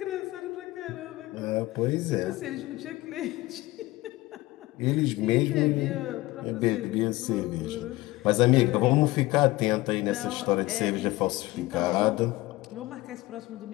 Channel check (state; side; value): quieter; right; 19.4 dB